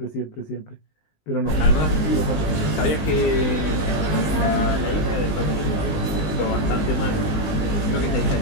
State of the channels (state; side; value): late; right; 19 ms